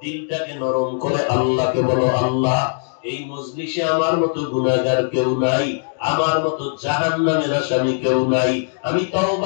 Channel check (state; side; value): silent; right; digital silence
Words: দিলটাকে নরম করে আল্লাহকে বলো, আল্লাহ এই মজলিসে আমার মতো গুনাহগার কেউ নাই, আমার মতো জাহান্নামের আসামি কেউ নাই, আমি